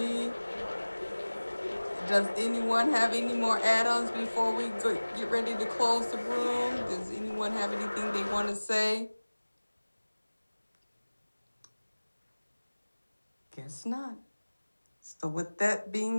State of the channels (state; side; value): inverted; both; correlation -1.00